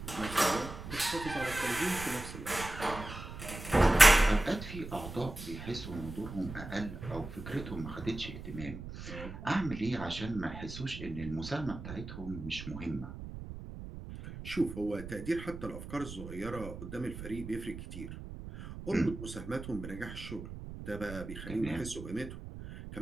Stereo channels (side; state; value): right; noise; rumble, 10 dB below the sound